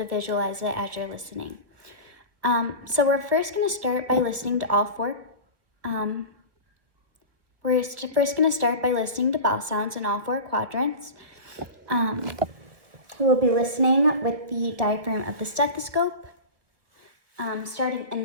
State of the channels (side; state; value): left; late; 1.6 ms